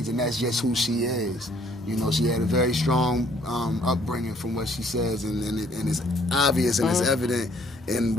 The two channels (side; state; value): both; normal; correlation 0.62